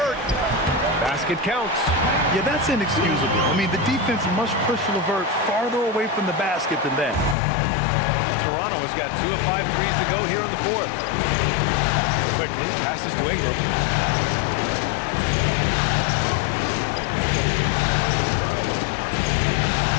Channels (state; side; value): drops out; right; at 7.4 s